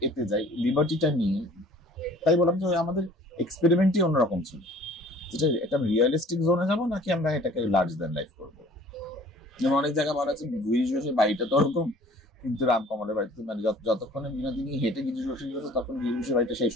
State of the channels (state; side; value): normal; both; correlation 0.51